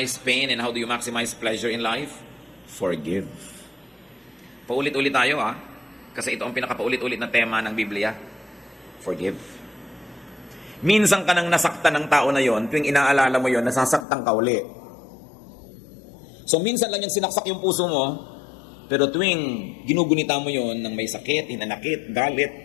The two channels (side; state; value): right; drops out; at 14.1 s